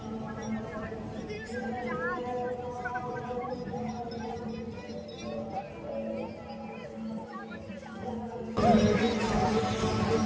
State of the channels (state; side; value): identical; both; correlation 1.00